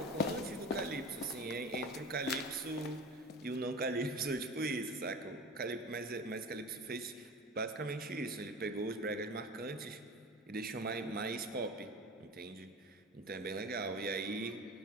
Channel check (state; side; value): normal; both; correlation 0.34